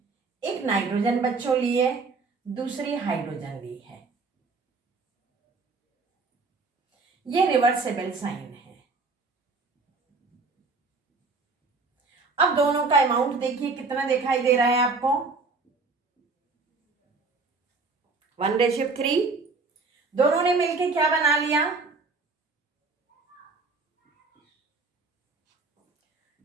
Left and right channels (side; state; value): left; quieter; 4.0 dB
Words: एक नाइट्रोजन बच्चों ली है, दूसरी हाइड्रोजन ली है। ये रिवर्सेबल साइन है। अब दोनों का अमाउंट देखिए कितना दिखाई दे रहा है आपको, 1:3। दोनों ने मिलके क्या बना लिया,